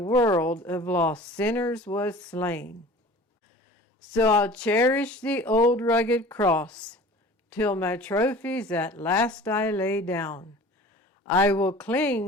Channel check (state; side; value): normal; both; correlation 0.42